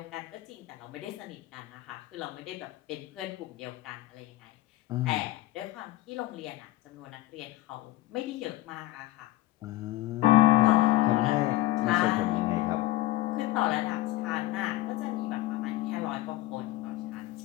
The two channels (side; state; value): right; quieter; 17.0 dB